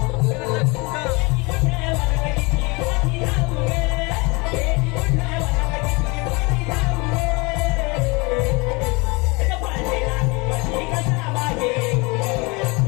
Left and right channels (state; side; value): quieter; right; 27.5 dB